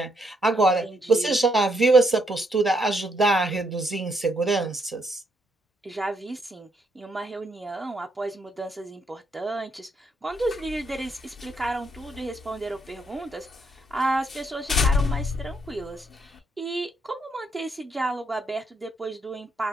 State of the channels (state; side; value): normal; both; correlation 0.75